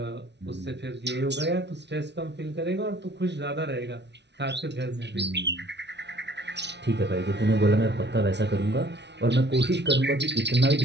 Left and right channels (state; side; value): late; left; 0.50 ms